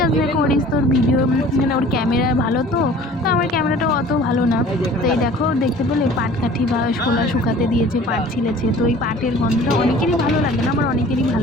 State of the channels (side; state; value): both; normal; correlation 0.47